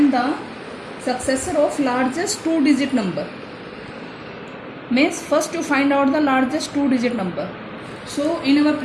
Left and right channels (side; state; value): both; identical; correlation 1.00